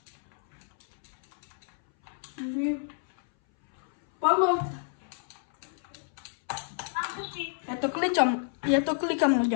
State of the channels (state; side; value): silent; right; 58 dB below the other